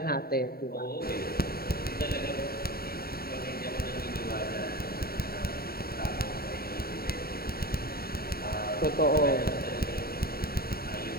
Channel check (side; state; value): right; late; 0.44 ms